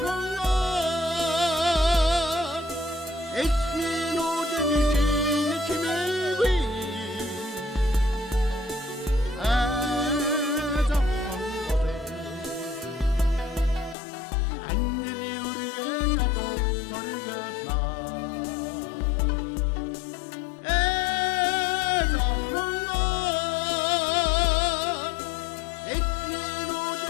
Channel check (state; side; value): drops out; right; at 14.0 s